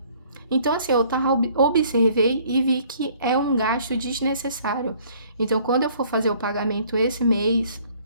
Então, assim, eu observei e vi que é um gasto desnecessário. Então, quando eu for fazer o pagamento esse mês,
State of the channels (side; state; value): both; inverted; correlation -0.58